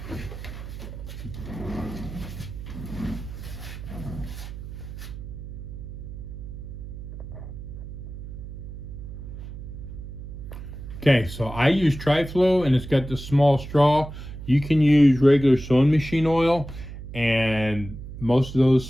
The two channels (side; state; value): right; noise; hum, 11 dB below the sound